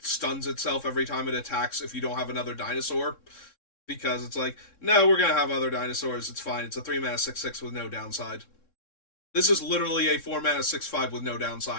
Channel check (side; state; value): right; late; 3.6 ms